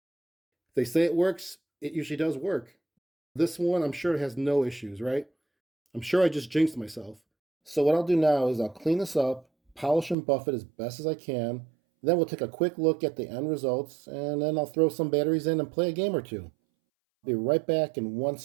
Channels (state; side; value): drops out; left; at 10.2 s